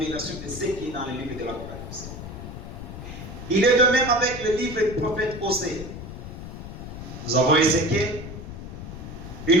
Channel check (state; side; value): noise; left; rumble, 10 dB below the sound